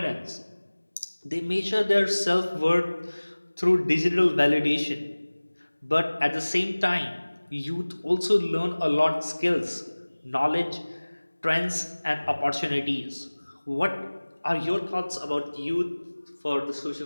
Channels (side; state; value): both; inverted; correlation -1.00